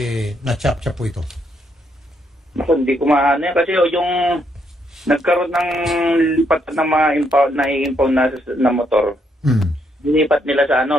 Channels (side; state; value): both; normal; correlation 0.74